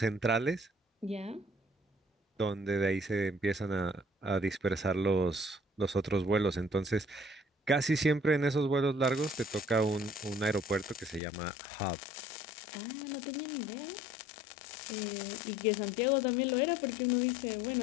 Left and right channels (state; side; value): drops out; right; at 11.2 s